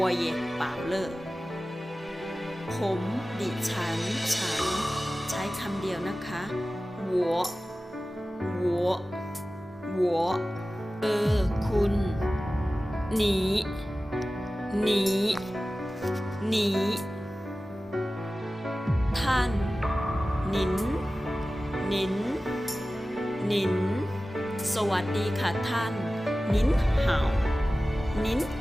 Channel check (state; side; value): normal; both; correlation 0.96